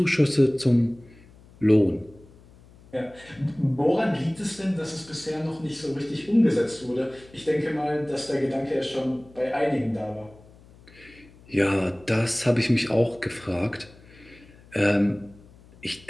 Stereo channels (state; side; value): noise; left; hum, 24 dB below the sound